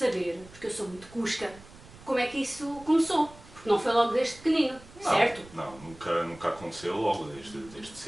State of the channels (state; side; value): noise; right; rumble, 20 dB below the sound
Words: porque eu sou muito cusca, como é que isso começou? Porque não foi logo desde pequenino, Não, certo? Não, nunca aconteceu logo desde